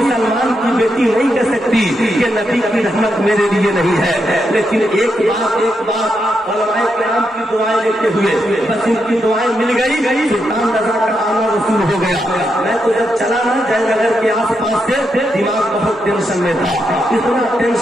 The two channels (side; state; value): both; normal; correlation 0.83